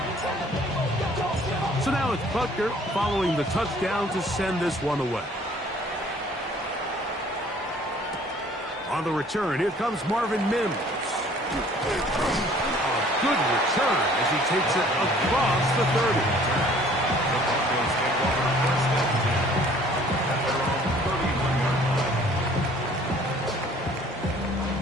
So now it's Butker following the touchdown to send this one away. On the return, here comes Marvin Mims. A good return as he takes it across the 30.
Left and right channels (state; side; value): normal; both; correlation 0.55